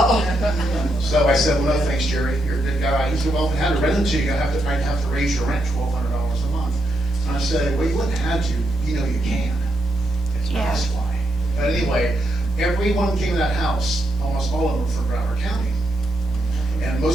So I said, well, no, thanks, Jerry, you're a good guy. He said, well, if I had to rent it to you, I'd have to raise your rent $1,200 a month. And I said, well, you wouldn't have to, you know you can. That's why. But anyway, everyone came to that house, almost all of them from Broward County. And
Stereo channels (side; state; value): both; normal; correlation 0.81